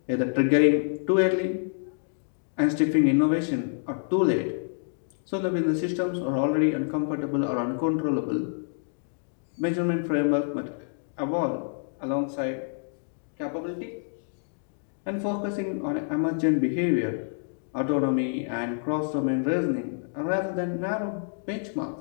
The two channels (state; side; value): silent; right; digital silence